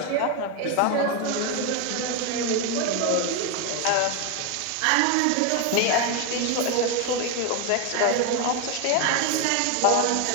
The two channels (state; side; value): different; both; correlation 0.02